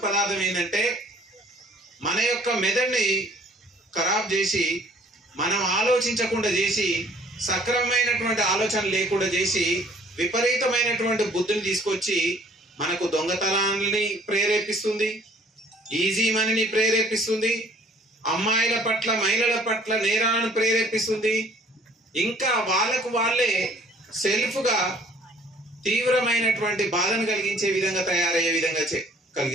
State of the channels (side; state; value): both; normal; correlation 0.57